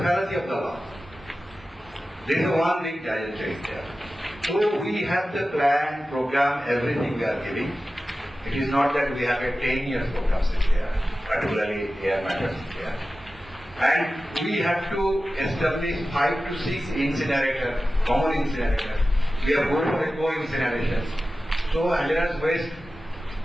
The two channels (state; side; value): normal; both; correlation 0.95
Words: fallacy of the law. There is one big giant change there. So we have the plan, program, everything we are giving. It is not that we have a 10 years program there, particularly air matters there. And we have to establish 5 to 6 incinerators, common incinerators. We are going for eco-incinerations. So hazardous waste,